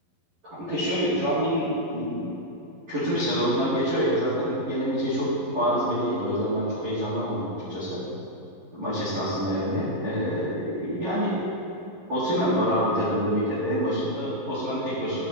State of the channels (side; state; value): left; late; 11 ms